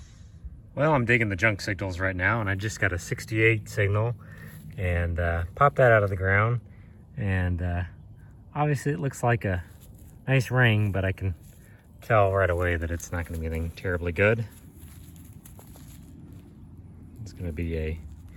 Well, I'm digging the junk signals right now, and I just got a 68 signal and popped that out of the ground. And obviously it looks like a nice ring, but I can tell right away that it's not going to be anything terribly good. It's going to be a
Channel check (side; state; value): both; identical; correlation 1.00